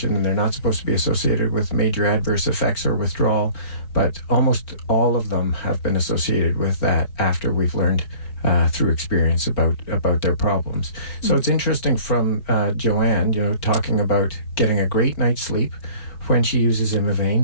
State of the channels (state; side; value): late; right; 4.5 ms